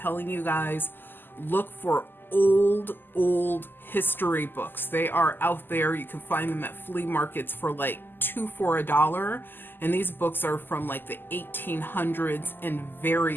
you guys, look for old history books. They are out there. You can find them at flea markets for like $2 for $1. And these books are from like the 1800s and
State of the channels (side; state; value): right; late; 0.094 ms